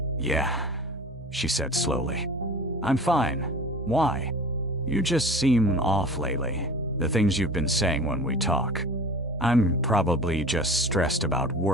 "Yeah," she said slowly. "I'm fine. Why? You just seem off lately, the things you've been saying when we talk." "I'm probably just stressed about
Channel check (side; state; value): both; normal; correlation 0.38